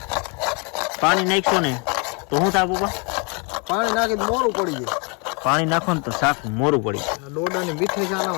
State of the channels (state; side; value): quieter; right; 33.4 dB